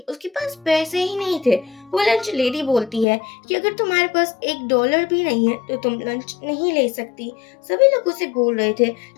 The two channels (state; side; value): drops out; right; at 3.1 s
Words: उसके पास पैसे ही नहीं थे। वो लंच लेडी बोलती है कि अगर तुम्हारे पास $1 भी नहीं है तो तुम लंच नहीं ले सकती। सभी लोग उसे बोल रहे थे